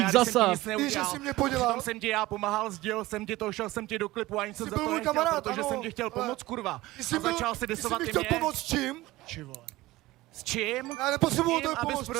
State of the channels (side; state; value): left; quieter; 18.4 dB